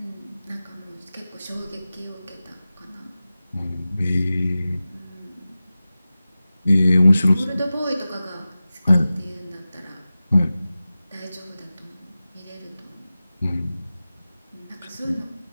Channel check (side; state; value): both; inverted; correlation -0.95